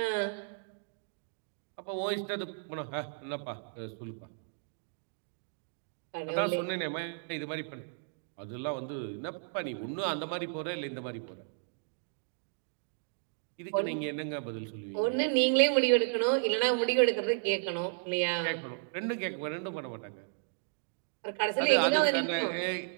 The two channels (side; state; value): left; silent; digital silence